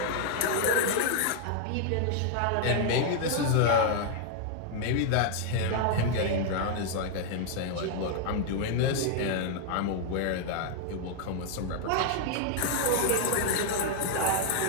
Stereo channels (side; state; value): both; different; correlation 0.00